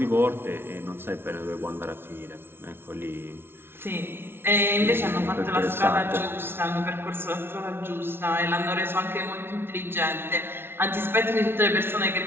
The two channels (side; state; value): left; late; 0.11 ms